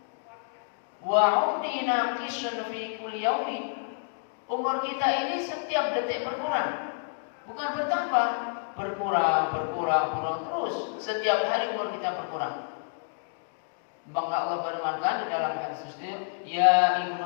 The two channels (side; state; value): right; silent; digital silence